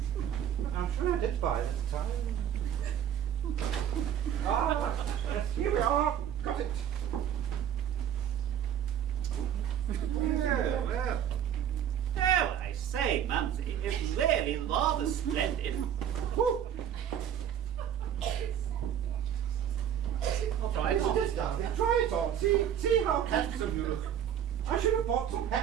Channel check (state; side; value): quieter; left; 9.5 dB